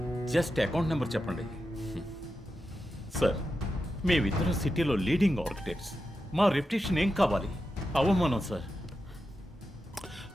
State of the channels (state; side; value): normal; both; correlation 0.89